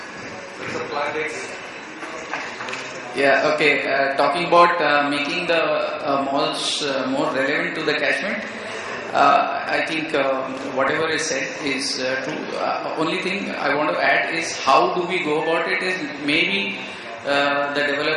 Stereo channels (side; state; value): both; identical; correlation 1.00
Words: Yeah, okay. Talking about making the malls more relevant to the catchment, I think whatever is said is true. Only thing I want to add is how do we go about it is maybe the